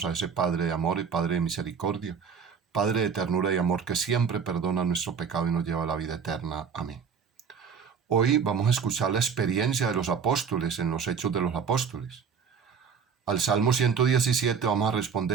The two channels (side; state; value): left; quieter; 6.5 dB